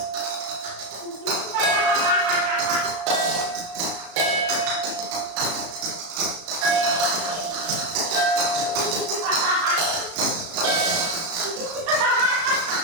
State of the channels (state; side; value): late; left; 35 ms